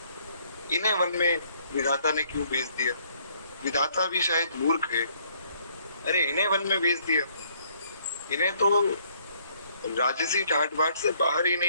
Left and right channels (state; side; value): inverted; both; correlation -0.66